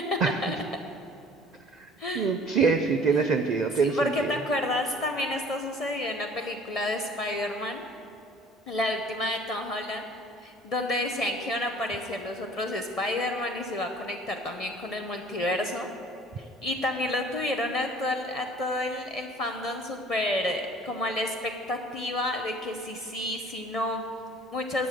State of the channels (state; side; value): normal; both; correlation 0.50